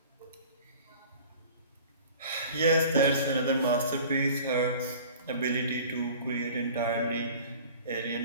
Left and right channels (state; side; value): inverted; both; correlation -0.44